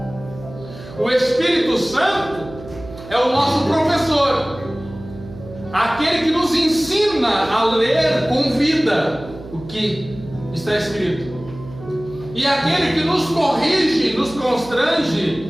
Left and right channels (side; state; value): right; noise; hum, 15 dB below the sound